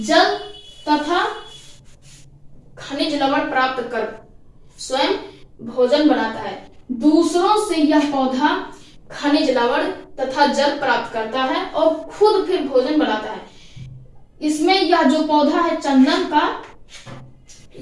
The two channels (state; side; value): identical; both; correlation 1.00